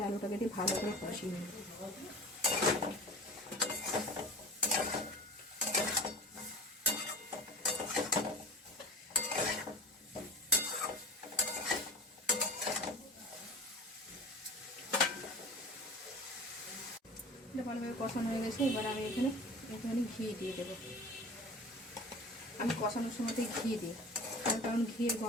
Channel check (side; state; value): both; normal; correlation 0.37